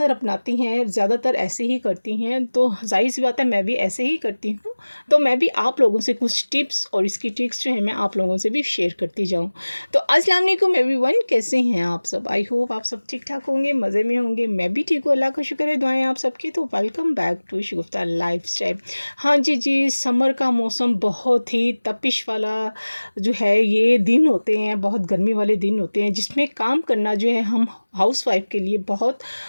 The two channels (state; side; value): inverted; both; correlation -1.00